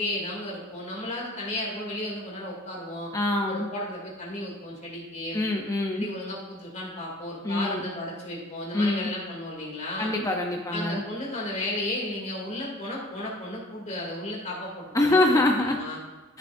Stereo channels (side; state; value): both; normal; correlation 0.51